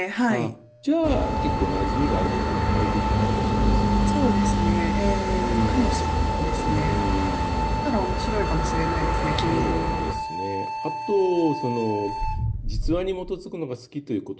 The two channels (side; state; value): both; identical; correlation 1.00